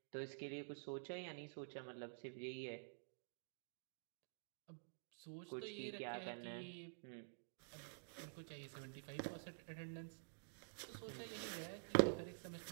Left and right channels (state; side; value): silent; left; digital silence